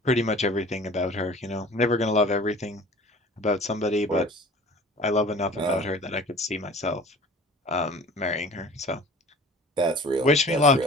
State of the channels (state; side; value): normal; both; correlation 0.44